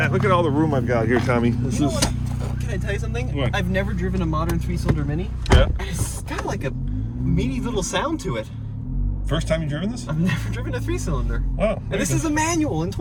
Look at all the room I've got here, Tommy. This You know is. what? Can I tell you something? What? I've never driven a modern 3-cylinder Mini. Yeah. It's got like a meaty little sound to it. First time you've driven this? I've never driven a 3-cylinder. Wow. And this is a manual in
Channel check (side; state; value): both; identical; correlation 1.00